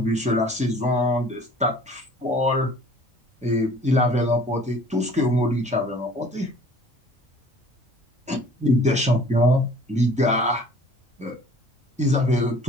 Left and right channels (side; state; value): both; normal; correlation 0.50